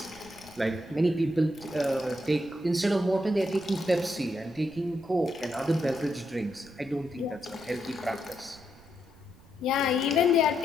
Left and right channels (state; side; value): noise; right; rumble, 24 dB below the sound